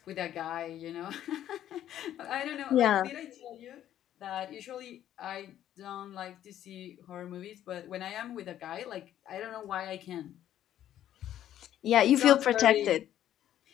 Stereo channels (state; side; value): quieter; right; 11.6 dB